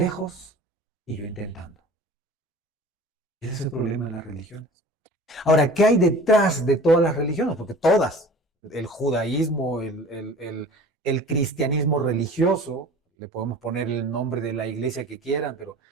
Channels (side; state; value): both; normal; correlation 0.43